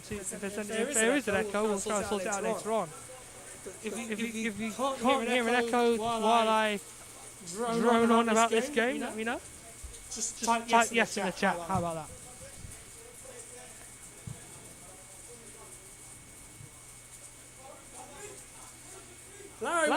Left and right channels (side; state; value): both; identical; correlation 1.00